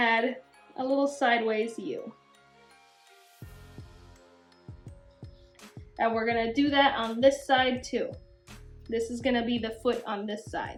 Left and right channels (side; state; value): both; identical; correlation 1.00